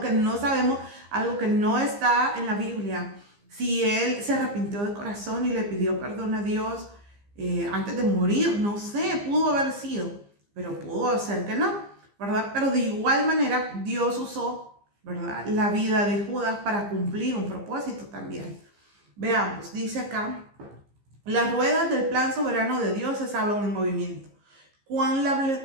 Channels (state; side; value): late; left; 15 ms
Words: no sabemos, algo que no está en la Biblia, si él se arrepintió de corazón y le pidió perdón a Dios antes de morir. No sé, pudo haber sido, pero pudo ser que no, ¿verdad? Pero de igual manera Dios usó, ¿verdad?, la vida de Judas para cumplir un propósito también. Veamos, dice acá, las ruedas del plan soberano de Dios estaban en movimiento. Cuán